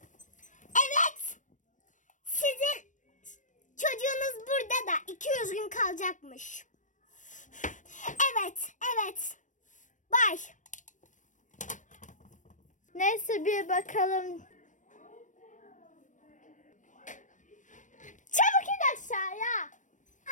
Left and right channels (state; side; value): late; right; 0.37 ms